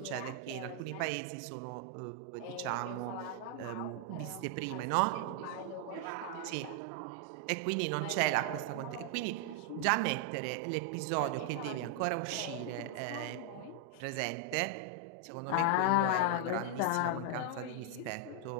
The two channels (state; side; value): different; both; correlation 0.00